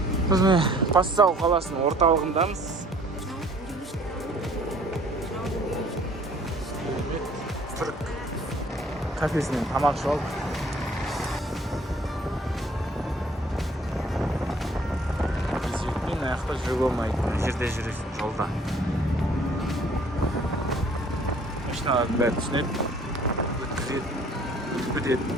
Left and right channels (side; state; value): both; normal; correlation 0.56